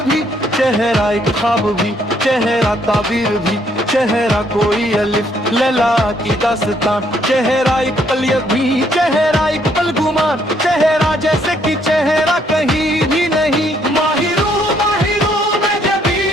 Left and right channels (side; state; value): both; normal; correlation 0.69